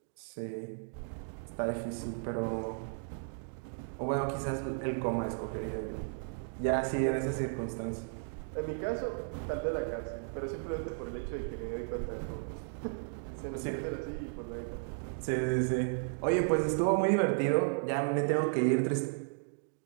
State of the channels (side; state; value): left; silent; digital silence